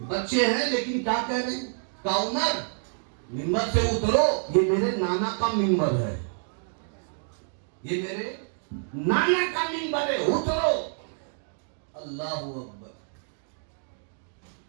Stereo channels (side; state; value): left; silent; digital silence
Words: بچے ہیں لیکن کیا کہہ رہے ہیں, کہا عمر منبر سے اترو, یہ میرے نانا کا منبر ہے, یہ میرے نانا کا منبر ہے, اترو. اللہ اکبر.